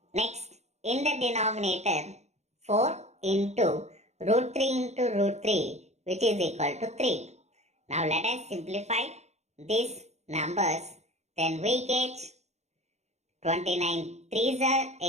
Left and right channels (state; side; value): late; left; 0.32 ms